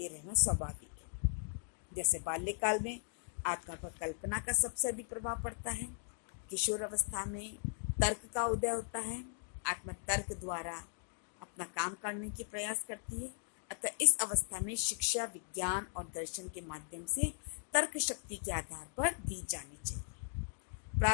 रहना स्वाभाविक है। जैसे बाल्यकाल में आत्मा पर कल्पना का सबसे अधिक प्रभाव पड़ता है, किशोर अवस्था में तर्क का उदय होता है, आत्मा तर्क द्वारा अपना काम करने की प्रयास करती है, अतः इस अवस्था में शिक्षा विज्ञान और दर्शन के माध्यम से तर्क शक्ति के आधार पर दी जानी चाहिए।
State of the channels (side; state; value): right; silent; digital silence